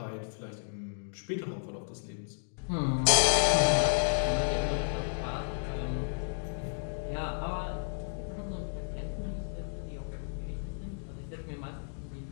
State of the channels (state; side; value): silent; right; digital silence